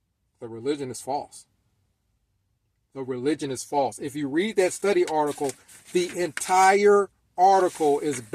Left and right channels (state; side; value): identical; both; correlation 1.00